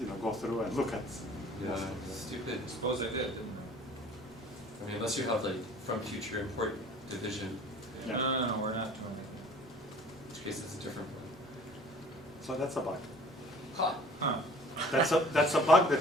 go through and look at. Yeah, stupid. I suppose I did, didn't I mean, unless you have like from future import division, I? Yeah. No, we're not doing in which case it's a different one. So that's a bug. Ha! it. Huh. That's a bug that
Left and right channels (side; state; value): right; noise; rumble, 27 dB below the sound